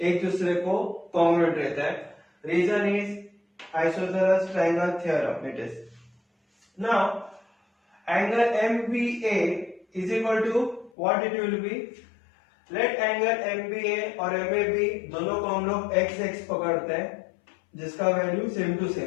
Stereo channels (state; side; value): drops out; right; at 10.9 s